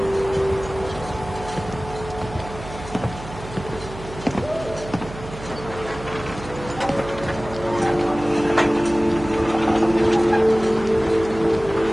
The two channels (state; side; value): noise; right; hum, 13 dB below the sound